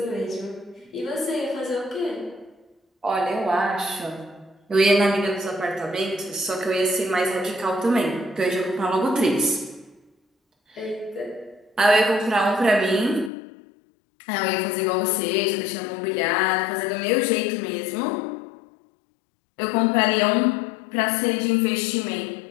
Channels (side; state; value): right; drops out; at 13.3 s